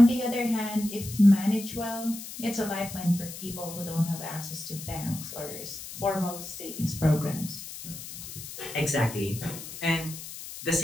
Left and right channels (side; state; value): left; noise; hiss, 11 dB below the sound